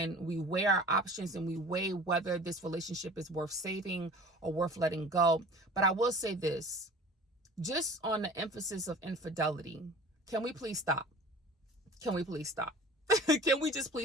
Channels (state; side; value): normal; both; correlation 0.44